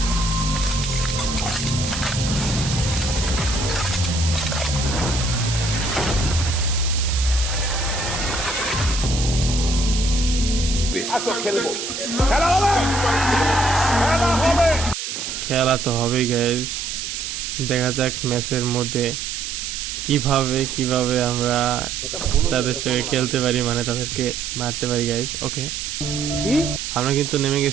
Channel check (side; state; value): right; noise; hiss, 5 dB below the sound